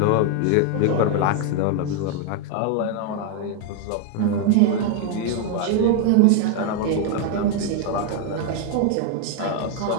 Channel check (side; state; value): both; different; correlation 0.00